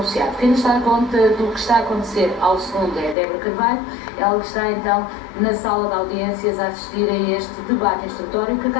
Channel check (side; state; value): right; drops out; at 3.2 s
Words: Quem nos dá conta do que está a acontecer ao segundo é Débora Carvalho, ela que está então na sala de audiências a assistir a este debate instrutório, que